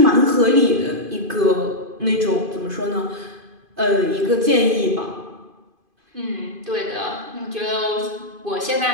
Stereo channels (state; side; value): late; left; 2.5 ms